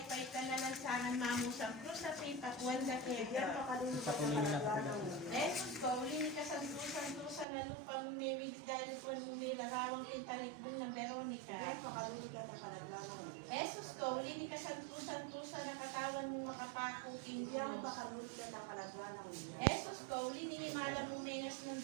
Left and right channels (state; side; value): drops out; left; at 7.5 s